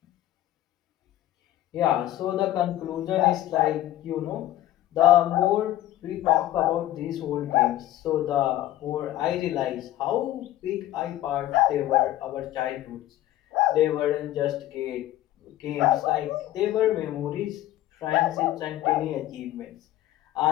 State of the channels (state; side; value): quieter; right; 14.0 dB